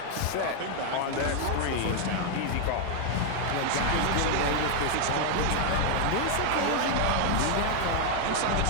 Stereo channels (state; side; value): different; both; correlation 0.00